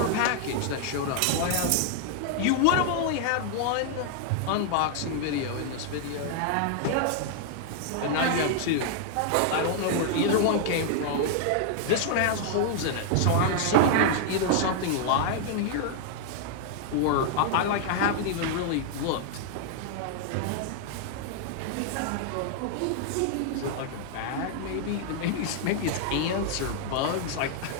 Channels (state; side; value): different; both; correlation 0.00